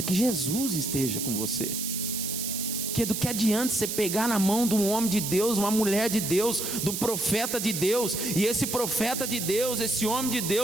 que Jesus esteja com você. Porque do que adianta você pegar na mão de um homem de Deus, uma mulher de Deus, de um profeta de Deus, e esse profeta de Deus, esse homem de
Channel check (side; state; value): right; noise; hiss, 3 dB below the sound